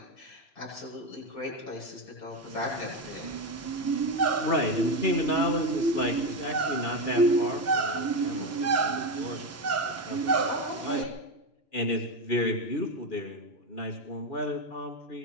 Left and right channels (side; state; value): right; late; 3.0 ms